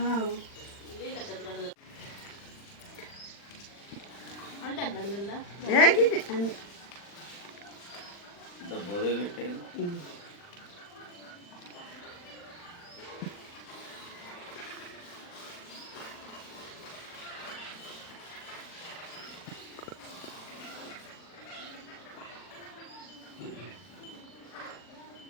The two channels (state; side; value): late; right; 40 ms